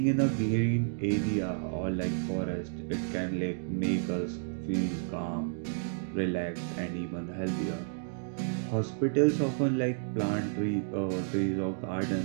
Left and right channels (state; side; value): silent; left; digital silence